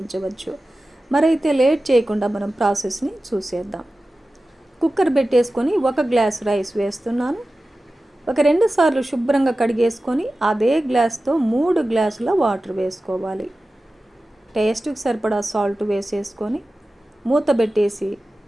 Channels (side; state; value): both; normal; correlation 0.95